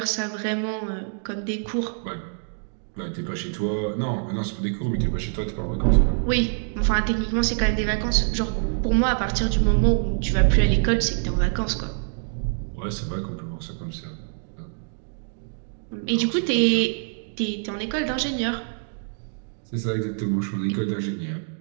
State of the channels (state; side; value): silent; left; 62 dB below the other